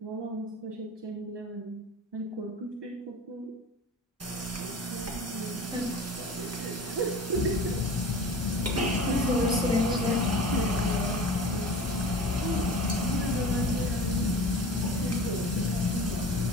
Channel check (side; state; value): both; normal; correlation 0.38